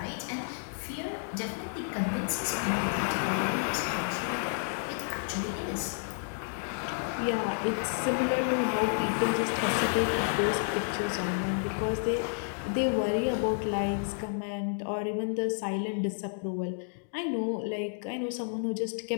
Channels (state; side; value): silent; right; digital silence